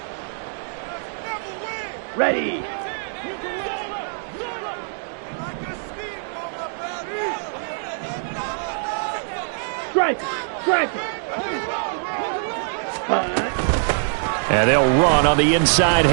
Ready. Strike. And they'll run on the inside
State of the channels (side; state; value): left; silent; digital silence